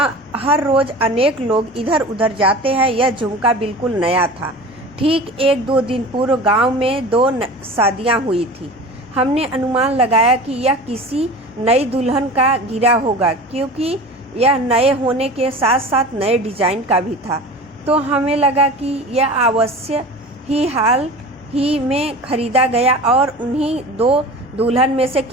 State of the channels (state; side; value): normal; both; correlation 0.36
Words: हर रोज अनेक लोग इधर उधर जाते हैं। यह झुमका बिल्कुल नया था। ठीक 1-2 दिन पूर्व गांव में 2 शादियां हुई थी। हमने अनुमान लगाया कि यह किसी नई दुल्हन का गिरा होगा, क्योंकि यह नए होने के साथ साथ नए डिजाइन का भी था। तो हमें लगा कि यह अवश्य ही हाल ही में खरीदा गया और उन्हीं 2 दुल्हन में से